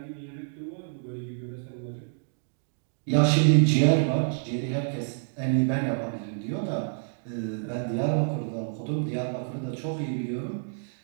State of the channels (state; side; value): silent; left; digital silence